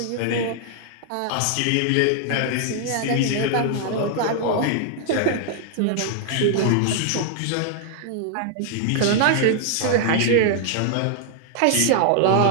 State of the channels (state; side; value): different; both; correlation 0.00